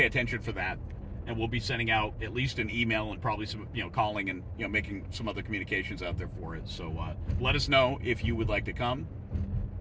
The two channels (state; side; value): identical; both; correlation 1.00